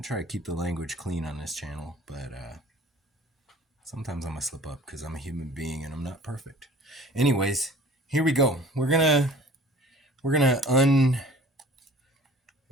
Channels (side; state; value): both; normal; correlation 0.48